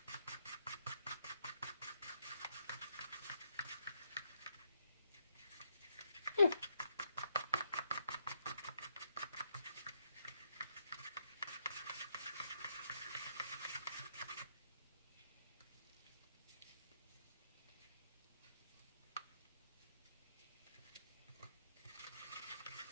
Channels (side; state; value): both; inverted; correlation -0.75